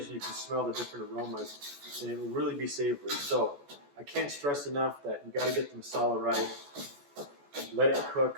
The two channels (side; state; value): left; late; 14 ms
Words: and you can smell the different aromas, and it will really be savory. So I can't stress enough that you got to get the masala right. Let it